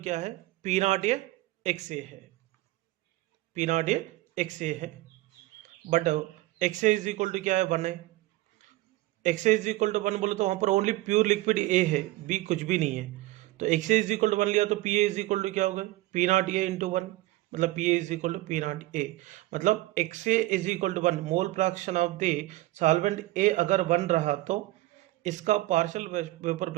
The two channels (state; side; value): quieter; left; 17.9 dB